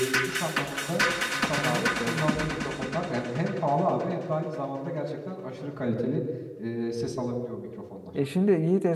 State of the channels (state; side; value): identical; both; correlation 1.00